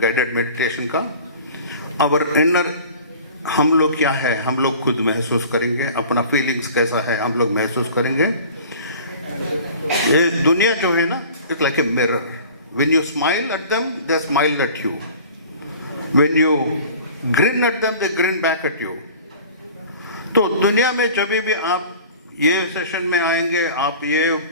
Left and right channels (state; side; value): inverted; both; correlation -0.43